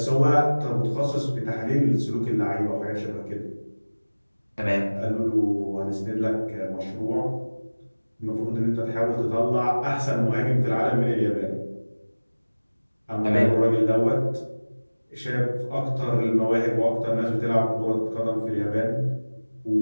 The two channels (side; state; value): both; inverted; correlation -1.00